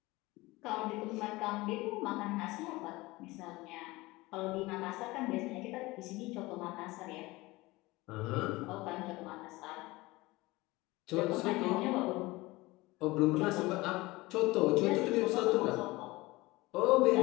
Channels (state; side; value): quieter; right; 21.0 dB